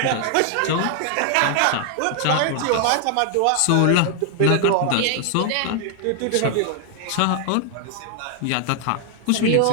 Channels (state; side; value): different; both; correlation 0.00